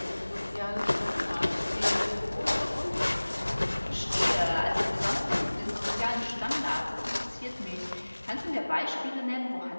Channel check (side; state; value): both; inverted; correlation -1.00